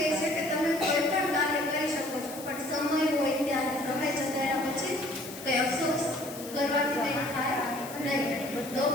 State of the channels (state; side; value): noise; left; hiss, 14 dB below the sound